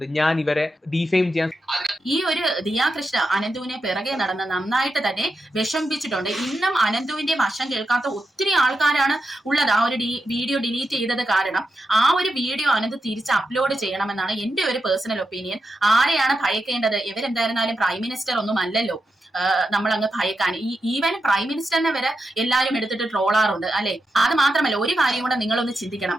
ഞാൻ ഇവരെ ഡിഫെയിം ചെയ്യാൻ. ഈ ഒരു ദിയാകൃഷ്ണ അനന്തുവിനെ പിറകെ നടന്ന് നന്നായിട്ട് തന്നെ വിഷമിപ്പിച്ചിട്ടുണ്ട്. ഇന്നും അനന്തുവിന്റെ വശം കേൾക്കാത്ത ഒത്തിരി ആൾക്കാരാണ് ഉള്ളത്. ആ ഒരു വീഡിയോ ഡിലീറ്റ് ചെയ്തത് കാരണം ആ ഒരു വീഡിയോ അനന്ത് തിരിച്ച് അപ്ലോഡ് ചെയ്യണമെന്നാണ് എന്റെ ഒരു പേഴ്സണൽ ഒപ്പീനിയൻ. ആരെയാണ് ഭയക്കേണ്ടത്? ഇവരെന്തായിരുന്നാലും പ്രൈം മിനിസ്റ്റർ ഒന്നും അല്ലല്ലോ നമ്മളങ്ങ് ഭയക്കാൻ. ഈവൻ പ്രൈം മിനിസ്റ്ററിനെ വരെ എല്ലാവരും എടുത്തിട്ട് ട്രോളാറുണ്ട് അല്ലെ. അത് മാത്രമല്ല, ഒരു കാര്യം കൂടെ നിങ്ങളൊന്ന് ചിന്തിക്കണം.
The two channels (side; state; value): both; normal; correlation 0.87